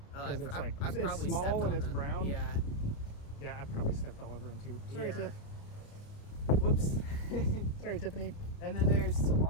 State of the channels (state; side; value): late; right; 28 ms